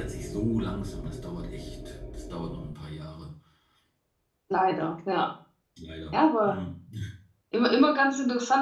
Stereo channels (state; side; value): identical; both; correlation 1.00